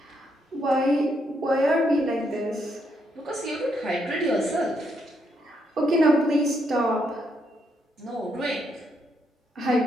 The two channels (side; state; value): both; normal; correlation 0.76